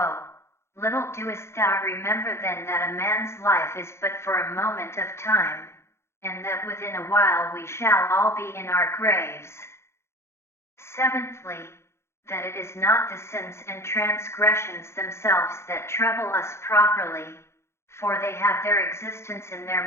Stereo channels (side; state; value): right; late; 0.13 ms